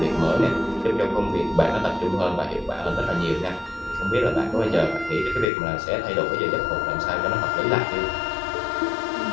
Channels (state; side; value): drops out; right; at 5.5 s